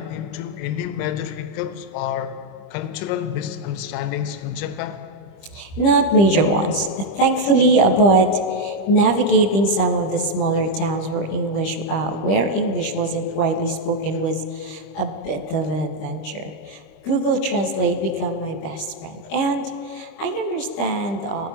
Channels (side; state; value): right; late; 25 ms